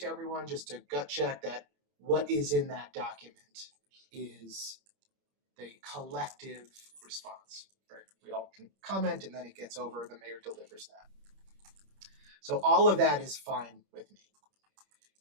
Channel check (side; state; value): left; late; 30 ms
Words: everyone just to gut check that what is in that document is the collective response. Right? We all can comment, and then it gets over, the mayor delivers that. So all of that is fine with me.